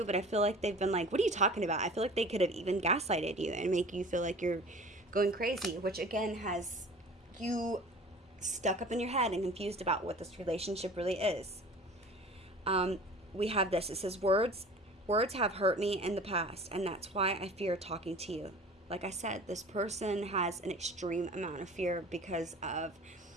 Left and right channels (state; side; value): normal; both; correlation 0.43